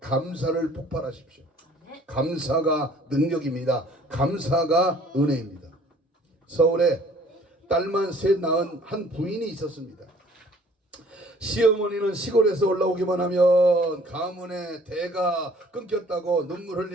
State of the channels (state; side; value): normal; both; correlation 0.55